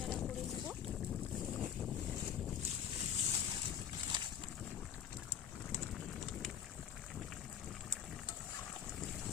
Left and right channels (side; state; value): right; quieter; 8.9 dB